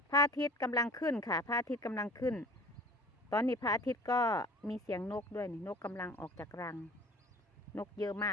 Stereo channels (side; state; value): both; normal; correlation 0.45